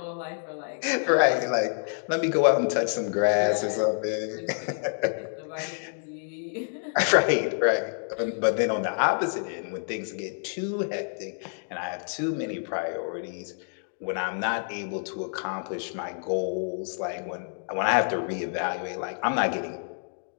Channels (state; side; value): silent; right; digital silence